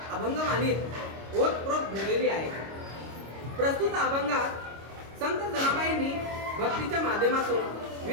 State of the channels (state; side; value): late; left; 26 ms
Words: अभंगवाणीत ओतप्रोत भरलेली आहे. प्रस्तुत अभंगात संत जनाबाईंनी भक्तीच्या माध्यमातून